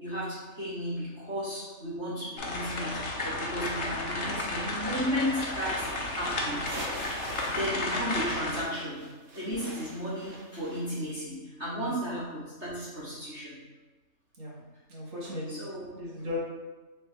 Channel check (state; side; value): late; left; 3.3 ms